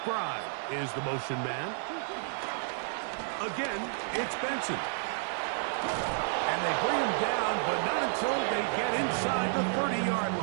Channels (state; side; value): silent; left; 55 dB below the other